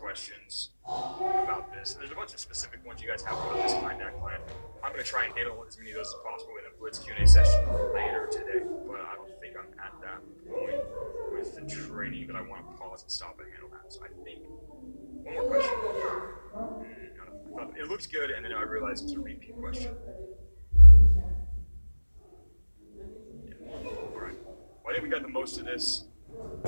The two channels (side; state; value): both; inverted; correlation -1.00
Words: about this. There's a bunch of specific ones you guys have about this client, that client. I'm going to try and handle as many of those as possible in a Blitz Q&A session later today, but I don't think I'm at that point with the training that I want to pause and stop and handle that. So I think one more question. It looks good, and then I realized it's a repeat question. All right. Well, I think we got the most of this.